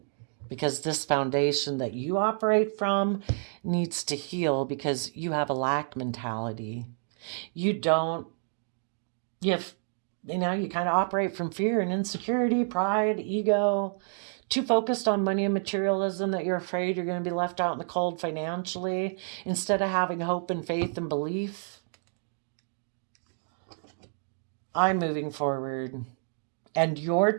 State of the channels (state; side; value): silent; left; 58 dB below the other